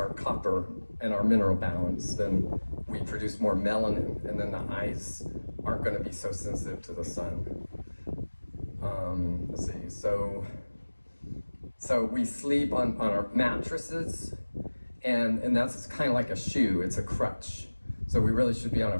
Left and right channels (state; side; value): inverted; both; correlation -1.00